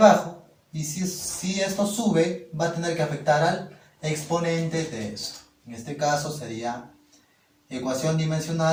y si esto sube va a tener que afectar al exponente de esto. En este caso sería ecuación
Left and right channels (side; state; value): both; identical; correlation 1.00